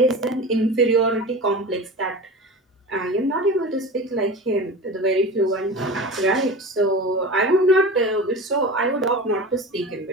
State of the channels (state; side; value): normal; both; correlation 0.31